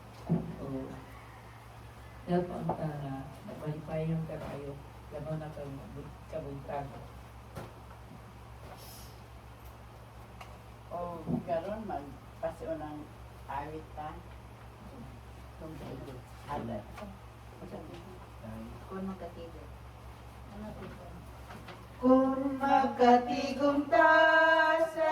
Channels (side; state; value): both; identical; correlation 1.00